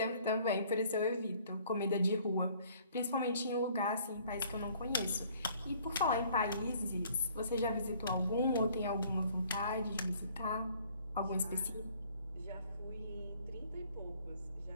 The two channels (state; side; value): inverted; both; correlation -0.58